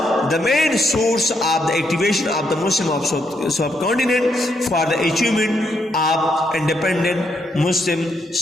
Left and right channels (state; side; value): normal; both; correlation 0.77